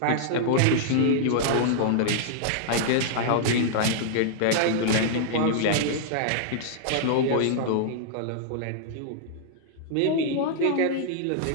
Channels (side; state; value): both; different; correlation -0.01